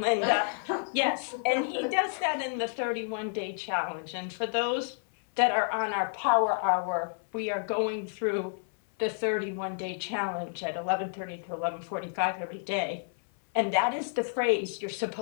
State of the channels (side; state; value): right; silent; 58 dB below the other